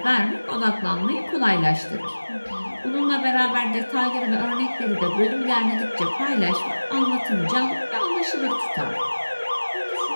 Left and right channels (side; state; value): both; inverted; correlation -1.00